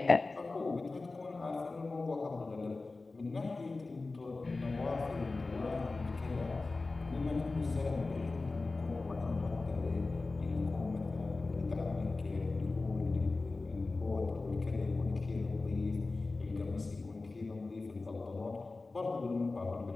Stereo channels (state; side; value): quieter; right; 3.5 dB